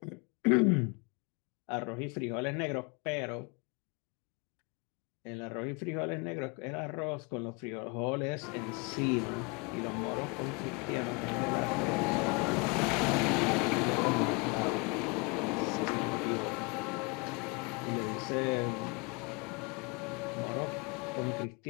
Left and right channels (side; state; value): right; quieter; 30.6 dB